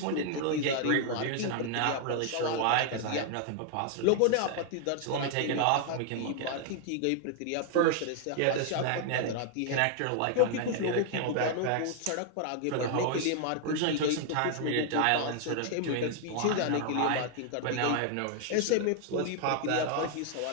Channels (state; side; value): different; both; correlation 0.00